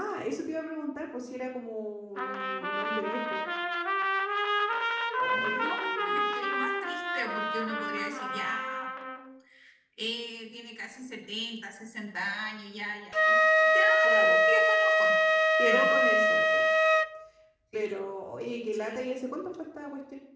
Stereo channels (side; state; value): both; identical; correlation 1.00